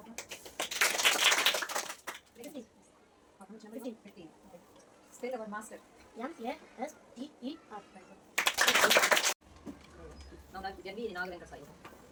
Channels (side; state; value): both; identical; correlation 1.00